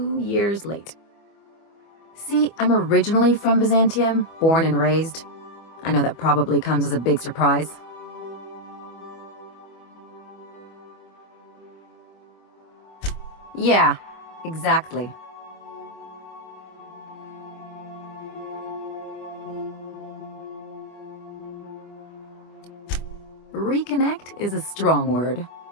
years late. See, I'm originally from Byzantium, born and raised. I know that probably comes as a big surprise. Yeah, exactly. Reconnect is a strong word.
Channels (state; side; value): late; right; 25 ms